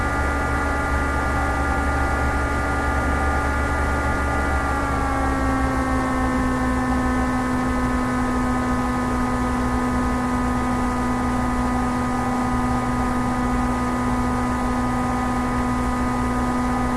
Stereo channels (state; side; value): identical; both; correlation 1.00